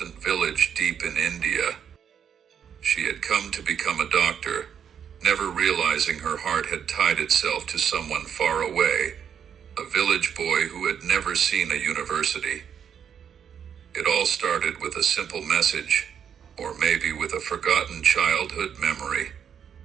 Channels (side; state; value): left; quieter; 8.1 dB